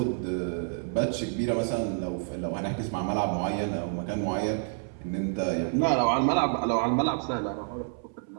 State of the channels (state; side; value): silent; left; 59 dB below the other